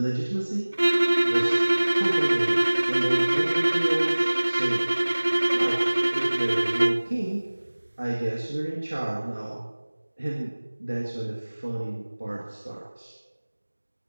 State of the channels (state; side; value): inverted; both; correlation -1.00